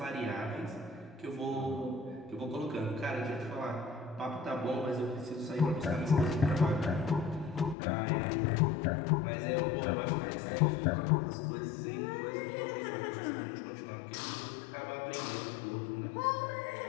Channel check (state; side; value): drops out; right; at 7.8 s